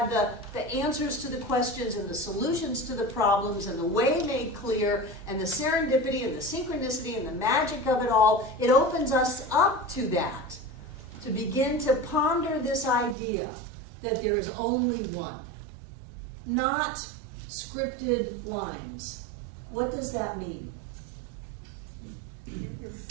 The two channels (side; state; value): left; drops out; at 13.2 s